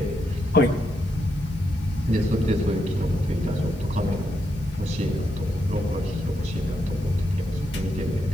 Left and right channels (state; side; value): normal; both; correlation 0.81